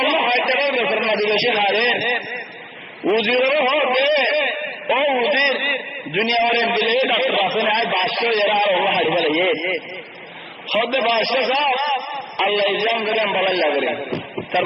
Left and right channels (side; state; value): both; identical; correlation 1.00